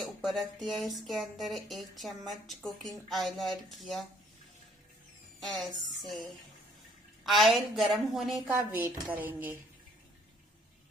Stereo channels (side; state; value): both; normal; correlation 0.62